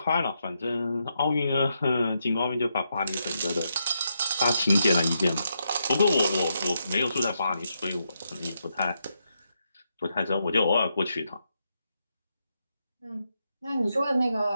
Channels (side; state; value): both; inverted; correlation -0.82